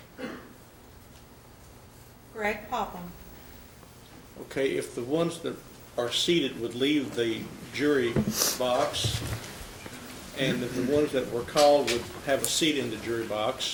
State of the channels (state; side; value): identical; both; correlation 1.00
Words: Greg Popham. Okay, if the ones that are seated would leave the jury box, and if the ones that were called would have a seat in the jury